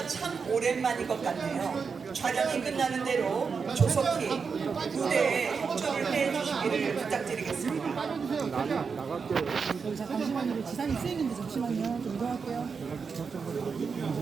참 오랜만인 것 같네요. 촬영이 끝나는 대로 조속히 무대에 협조를 해주시기를 부탁드리겠습니다. 잠시만요. 지상이 쓰이는데 잠시만요. 좀 이동할게요.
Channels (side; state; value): left; quieter; 5.5 dB